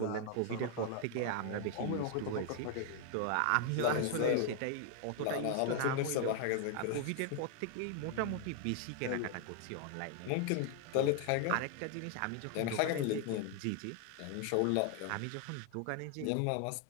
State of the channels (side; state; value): both; different; correlation 0.00